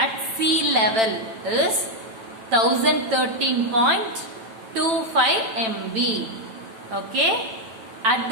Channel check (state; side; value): late; left; 9.1 ms